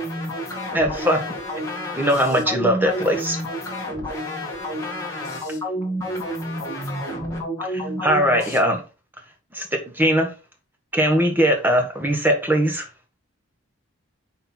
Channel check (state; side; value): normal; both; correlation 0.43